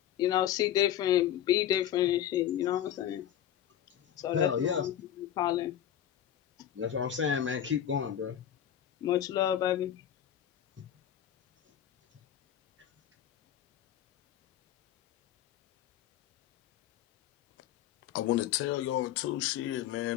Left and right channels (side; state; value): right; quieter; 10.9 dB